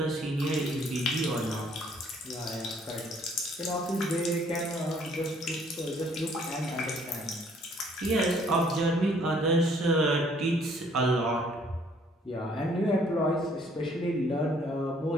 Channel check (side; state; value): both; normal; correlation 0.62